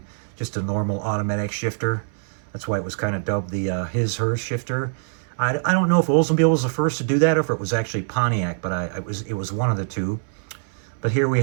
just a normal automatic shifter. That's why it was kind of dubbed the his/hers shifter. I don't know if Oldsmobile was the first to do that or if it was actually Pontiac, but it was one of the two. But here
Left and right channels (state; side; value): silent; left; 63 dB below the other